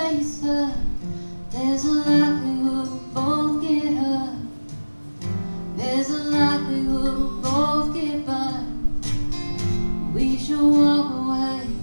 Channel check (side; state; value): both; inverted; correlation -1.00